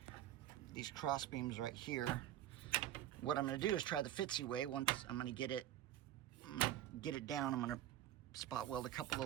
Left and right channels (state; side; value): quieter; left; 12.4 dB